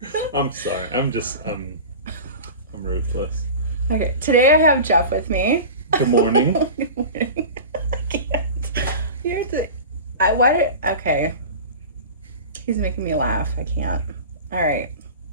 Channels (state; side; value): inverted; both; correlation -0.33